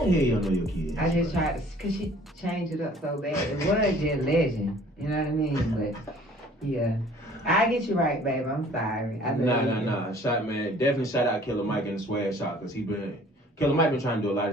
the hell you don't know your kids? I just tried to, cause she changed it up so bad. It was just Legend. You know what I mean? But yeah. I get you right, babe. I'm sorry. Nah. Definitely shout out Killer Mike and the Swag Shop, cause Killer Mike been trying to do a lot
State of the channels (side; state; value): both; normal; correlation 0.53